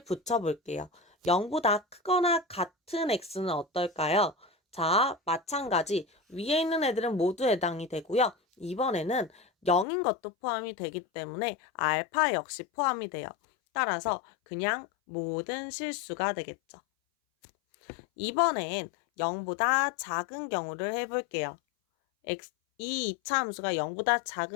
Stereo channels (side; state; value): right; drops out; at 9.9 s